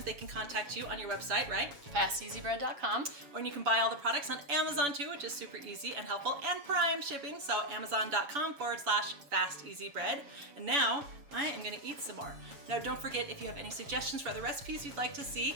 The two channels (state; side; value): late; left; 7.2 ms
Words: they can contact you on your website, right? FastEasyBread.com. Or you can buy all the products on Amazon too, which is super easy and helpful, and Prime shipping, so Amazon.com/FastEasyBread. And now I am gonna eat some more. Now, don't forget, if you have any suggestions for other recipes you'd like to see,